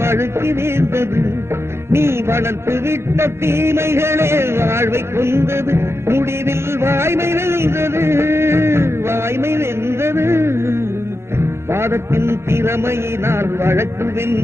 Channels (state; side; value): late; left; 0.12 ms